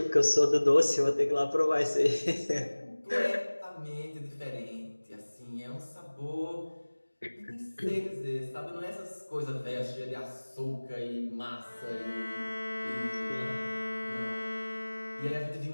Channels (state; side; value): inverted; both; correlation -1.00